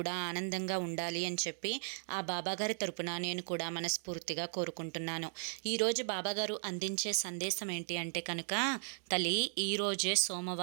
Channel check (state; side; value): silent; left; digital silence